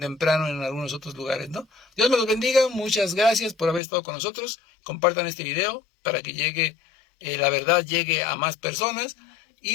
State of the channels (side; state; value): right; drops out; at 3.8 s